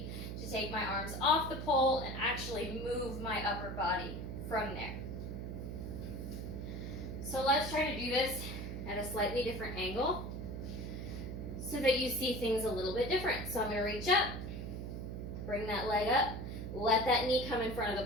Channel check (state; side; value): noise; right; hum, 6 dB below the sound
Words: to take my arms off the pole and actually move my upper body from there. So let's try to do this at a slightly different angle, so that you see things a little bit different. So I'm going to reach up, bring that leg up, let that knee come in front